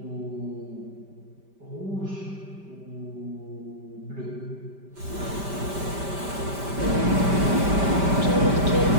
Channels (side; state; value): left; late; 5.1 ms